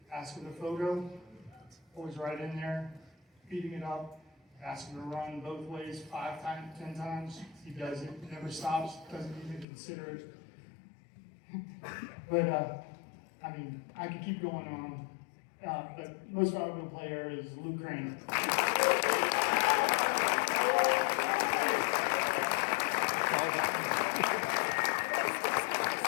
ask him a photo, always right in there, beating it up, ask him to run both ways 5 times, 10 times, he does it, never stops, doesn't even consider it. But, I could keep going on, but most valuable player is Luke Crane.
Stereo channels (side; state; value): right; drops out; at 9.7 s